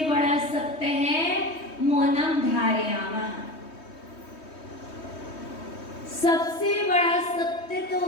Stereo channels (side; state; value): right; late; 3.2 ms